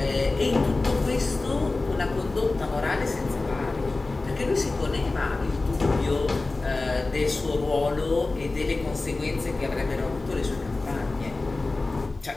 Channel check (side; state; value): right; quieter; 3.3 dB